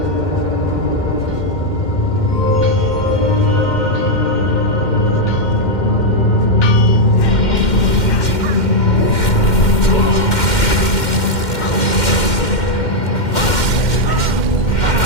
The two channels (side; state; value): right; late; 2.1 ms